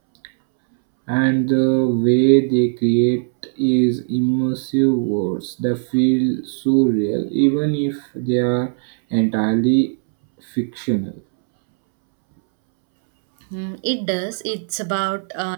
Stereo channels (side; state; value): left; silent; 67 dB below the other